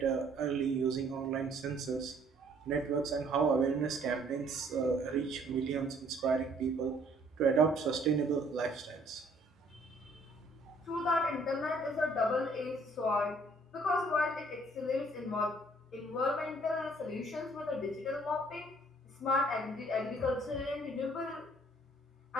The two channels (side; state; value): both; normal; correlation 0.61